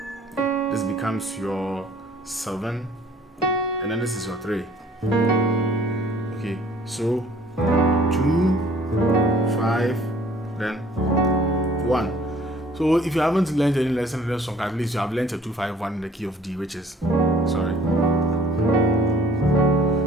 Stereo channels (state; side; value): normal; both; correlation 0.55